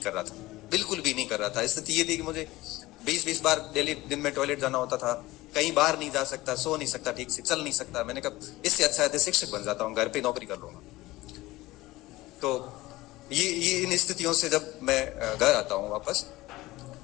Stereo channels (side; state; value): right; quieter; 18.7 dB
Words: कर रहा था, बिल्कुल भी नहीं कर रहा था। स्थिति ये थी कि मुझे 20-20 बार डेली दिन में टॉयलेट जाना होता था, कहीं बाहर नहीं जा सकता, सो नहीं सकता, ठीक से चल नहीं सकता। मैंने कहा इससे अच्छा है शिक्षक बन जाता हूँ, घर पे नौकरी कर लूंगा। तो ये इन स्थितियों से जब मैं घर आता हूँ वापस,